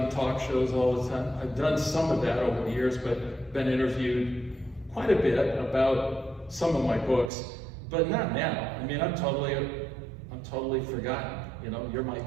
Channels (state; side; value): drops out; left; at 7.3 s